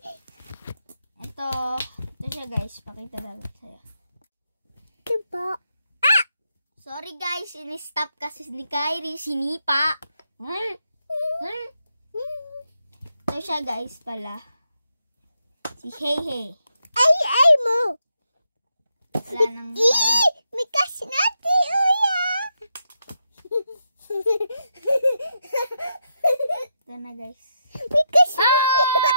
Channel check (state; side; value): inverted; both; correlation -0.83